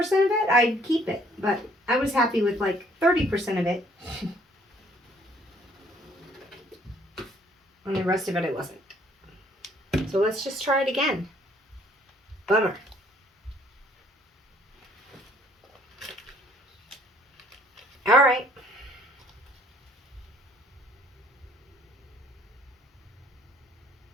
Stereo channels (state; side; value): normal; both; correlation 0.61